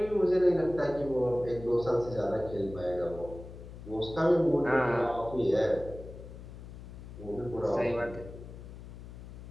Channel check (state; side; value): noise; left; hum, 14 dB below the sound